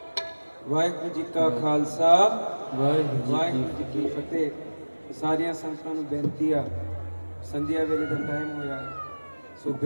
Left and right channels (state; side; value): inverted; both; correlation -1.00